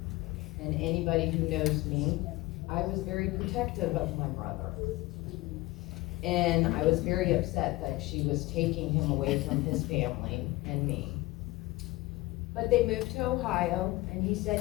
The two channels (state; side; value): quieter; right; 20.2 dB